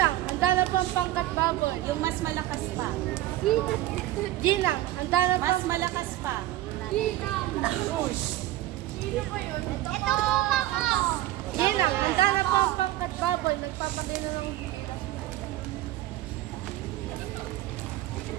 handa na po ang pangkat baboy. Yung mas malakas pa. Ginang, handa na po Mas ang... malakas pa. Ginang! Sino po yun? Ito po ako! Ginang, handa na po ang pangkat baboy. Nagpapagay na ng gilas.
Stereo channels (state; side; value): quieter; left; 15.1 dB